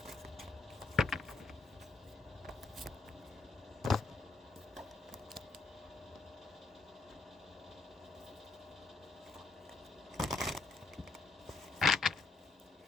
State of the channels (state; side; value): quieter; right; 3.8 dB